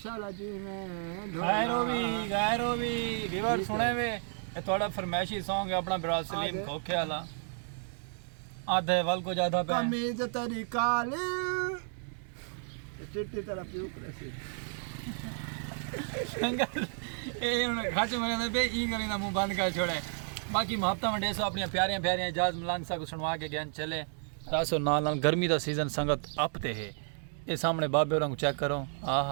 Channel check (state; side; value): silent; left; 56 dB below the other